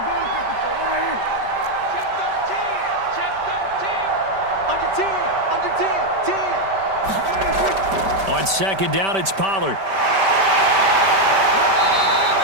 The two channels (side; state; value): left; late; 5.1 ms